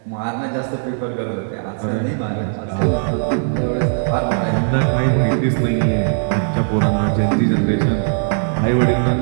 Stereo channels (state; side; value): silent; left; digital silence